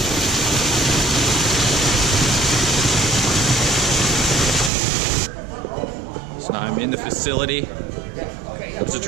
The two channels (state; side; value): drops out; left; at 4.7 s